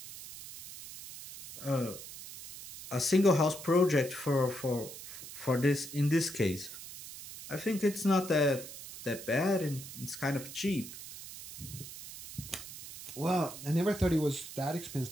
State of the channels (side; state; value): right; noise; hiss, 13 dB below the sound